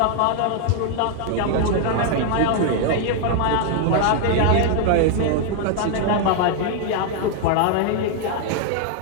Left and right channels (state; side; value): different; both; correlation 0.00